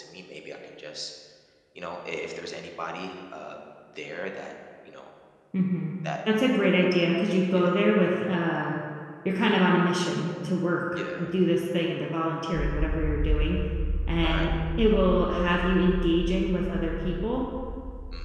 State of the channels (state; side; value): identical; both; correlation 1.00